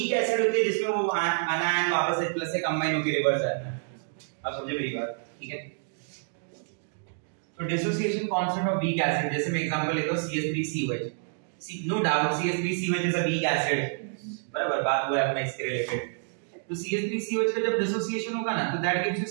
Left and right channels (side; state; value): left; silent; digital silence